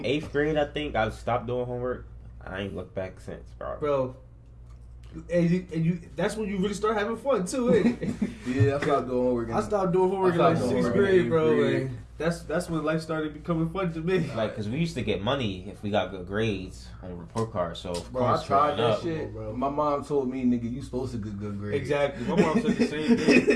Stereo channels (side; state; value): both; identical; correlation 1.00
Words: eighth grade, I think I stopped doing homework. I ain't looked back since, bro. And you, that's when you really start having fun too, ain't it? Yeah, I stopped doing homework. I stopped doing homework in like doing 6th homework grade, in bro. 8th grade. And that's when life started becoming fun to me. Like, cause we used to get money if we got good grades on report cards. So, of Bro, course, I tried growing that up, shit. bro. My mom told me, nigga, you supposed to get good grades. Exactly. My mom said the same